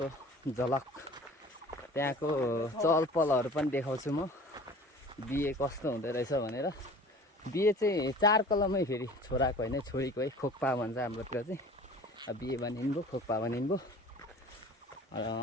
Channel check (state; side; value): normal; both; correlation 0.44